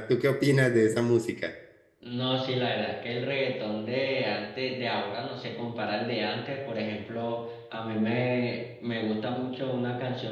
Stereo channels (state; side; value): identical; both; correlation 1.00